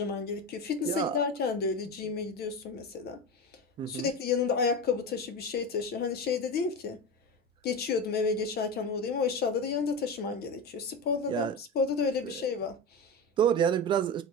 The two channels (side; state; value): both; normal; correlation 0.22